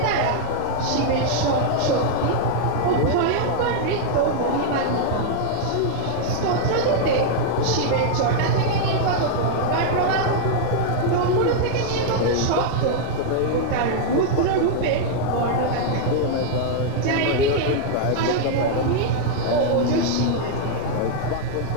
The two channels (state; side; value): different; both; correlation -0.01